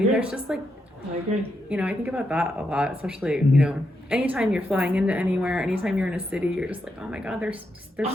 there's just like. I agree. I think about that a lot, especially, anytime you're flying into anywhere, anytime you're in a city, you're just like, oh my God, there's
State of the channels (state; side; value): normal; both; correlation 0.82